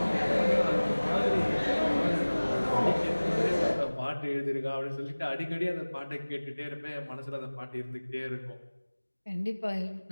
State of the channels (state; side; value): inverted; both; correlation -1.00